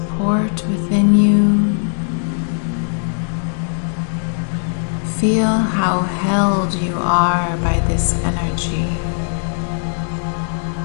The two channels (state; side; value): silent; right; 61 dB below the other